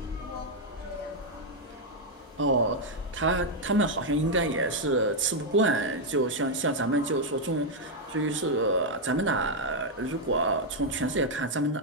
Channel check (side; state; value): both; normal; correlation -0.01